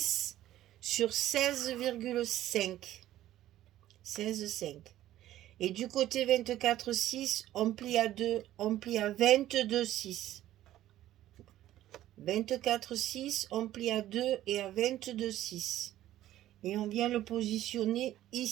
sur 16,5. 16,5. Et du côté 24,6, on plie à 2, on plie à 22,6. 24,6, on plie à 2 et à 22,6. Et on vient le positionner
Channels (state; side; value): quieter; left; 13.6 dB